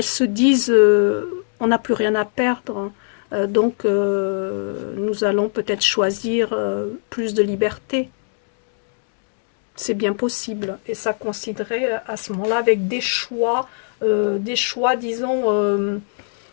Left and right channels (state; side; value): silent; right; digital silence